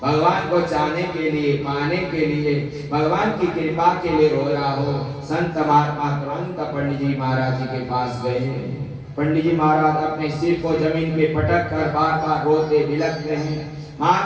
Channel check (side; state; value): both; identical; correlation 1.00